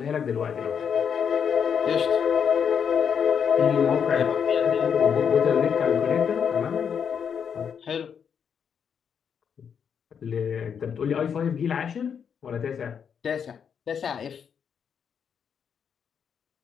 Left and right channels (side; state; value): right; quieter; 7.3 dB